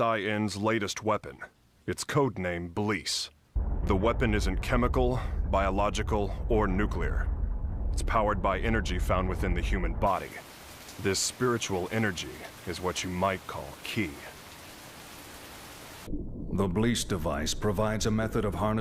latest weapon. Its codename Bleece. The weapon isn't chemical, biological, or nuclear. It's powered by energy found within the human body. This spiritual energy is what you might call ki. The Bleece device provides a method of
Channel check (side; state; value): both; identical; correlation 1.00